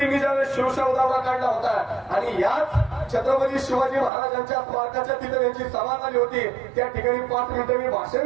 ज्यावेळेस शिवशाहू दौरा काढला होता आणि याच छत्रपती शिवाजी महाराजांच्या स्मारकाच्या तिथे त्यांची सभा झाली होती. त्या ठिकाणी 5 मिनिटं मी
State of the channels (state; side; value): drops out; left; at 4.1 s